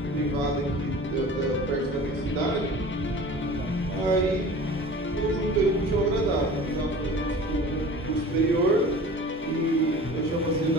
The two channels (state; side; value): normal; both; correlation 0.41